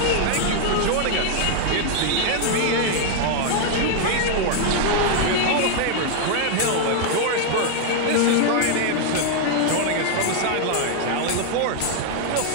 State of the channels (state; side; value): different; both; correlation 0.00